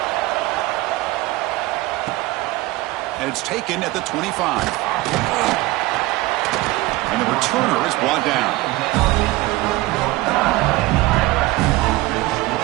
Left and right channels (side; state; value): left; quieter; 19.2 dB